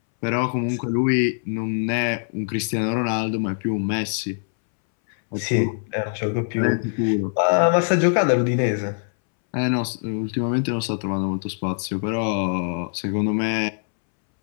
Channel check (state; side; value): silent; right; 63 dB below the other